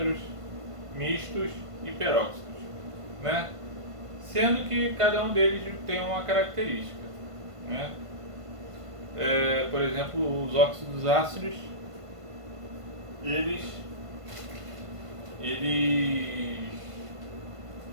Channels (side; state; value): left; late; 1.5 ms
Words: mistos e peróxidos, né? Sendo que cada um deles tem uma característica, né? Por exemplo, os óxidos ácidos, eles